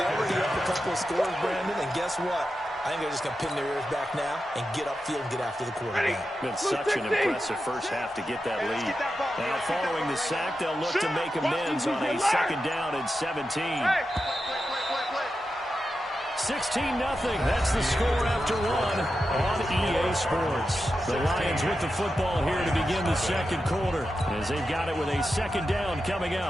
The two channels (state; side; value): normal; both; correlation 0.90